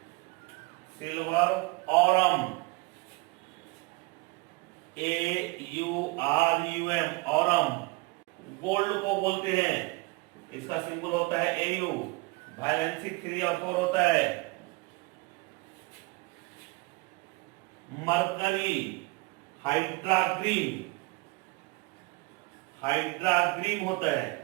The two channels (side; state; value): left; quieter; 24.8 dB